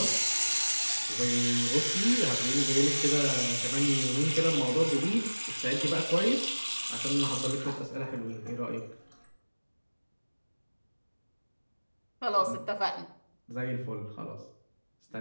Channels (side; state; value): both; inverted; correlation -1.00